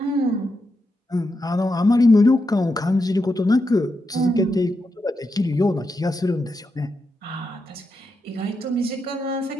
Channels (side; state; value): both; normal; correlation 0.85